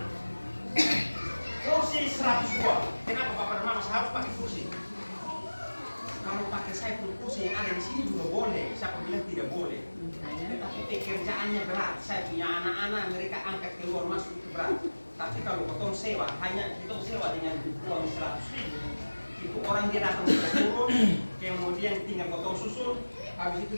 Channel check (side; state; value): both; inverted; correlation -1.00